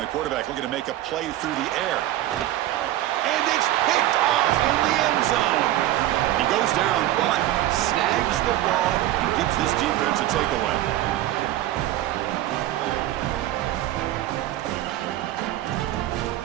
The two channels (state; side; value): quieter; left; 14.2 dB